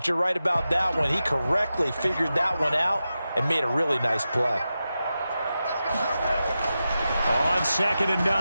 you're right about that one. He correctly figured that one out and made a really nice play. On 2nd and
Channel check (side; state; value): both; inverted; correlation -0.91